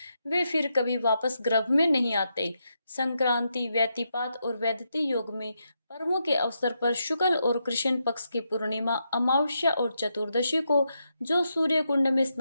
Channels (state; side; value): inverted; both; correlation -0.83